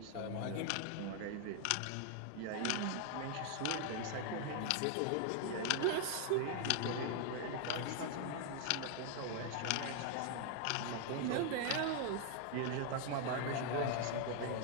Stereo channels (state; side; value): different; both; correlation 0.00